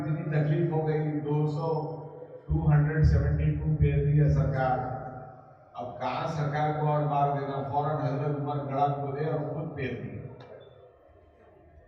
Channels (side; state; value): both; identical; correlation 1.00